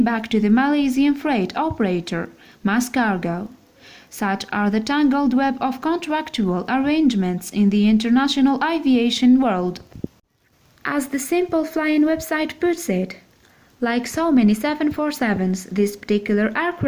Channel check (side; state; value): both; identical; correlation 1.00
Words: back to the Malaysian freight operator, Mas Cargo. Such are the tangled web of contractual arrangements in the international aviation world. As the Simple Flying website puts it, like so many 747s, this particular